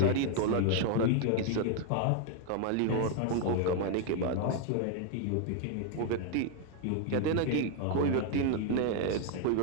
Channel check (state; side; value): different; both; correlation 0.01